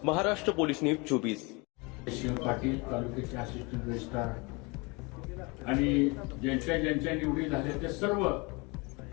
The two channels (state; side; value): quieter; right; 28.0 dB